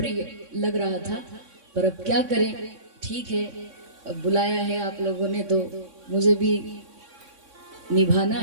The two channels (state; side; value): late; left; 3.6 ms